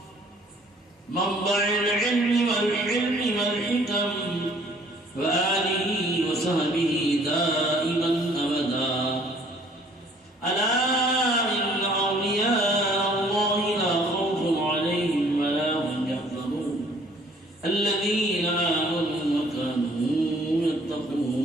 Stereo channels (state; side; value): normal; both; correlation 0.58